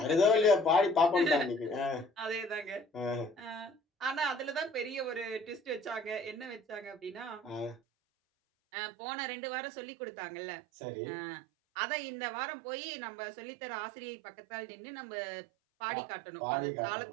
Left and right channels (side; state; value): left; drops out; at 7.8 s